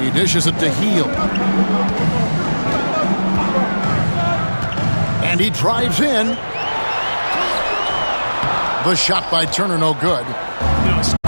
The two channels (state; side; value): inverted; both; correlation -1.00